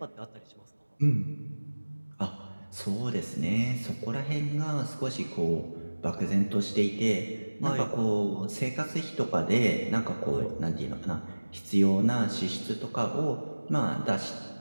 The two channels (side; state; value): both; inverted; correlation -1.00